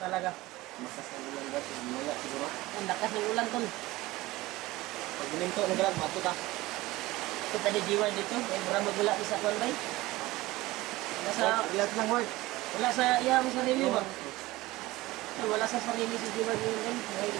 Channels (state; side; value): quieter; left; 19.1 dB